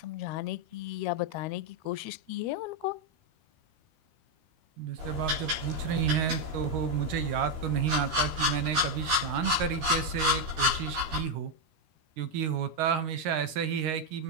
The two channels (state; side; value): late; left; 13 ms